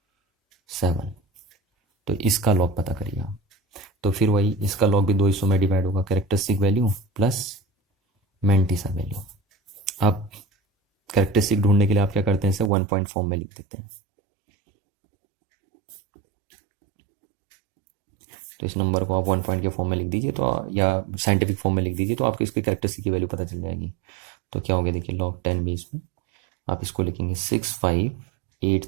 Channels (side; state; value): left; drops out; at 12.7 s